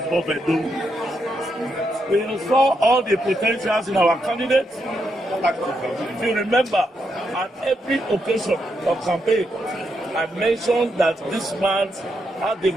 Bob Edo. We saw all the potentials in our candidates. If you remember, at every occasion of campaign, I mentioned that this man had the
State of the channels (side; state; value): both; normal; correlation 0.81